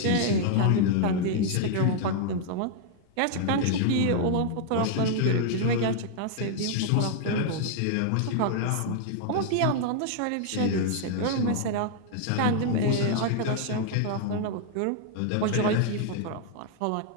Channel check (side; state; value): both; different; correlation -0.01